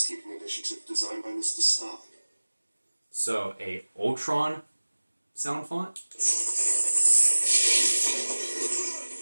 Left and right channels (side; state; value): both; inverted; correlation -1.00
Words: initiative designed by Mr. Stark. So, a Ultron sound font.